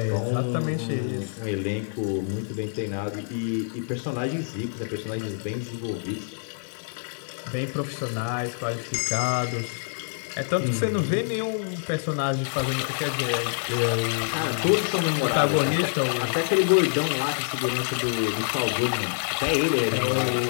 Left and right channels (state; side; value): silent; right; digital silence